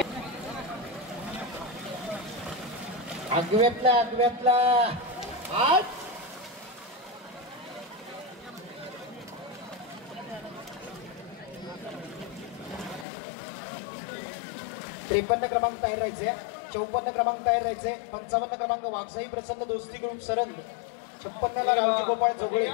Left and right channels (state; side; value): drops out; right; at 13.1 s